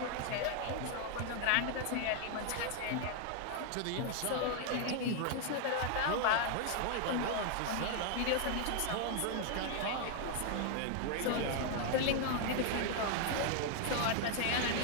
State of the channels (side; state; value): both; different; correlation 0.00